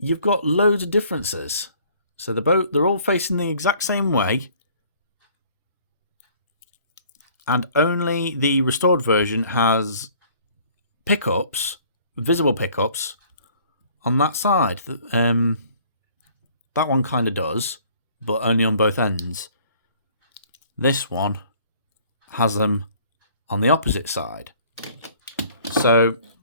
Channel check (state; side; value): inverted; both; correlation -0.56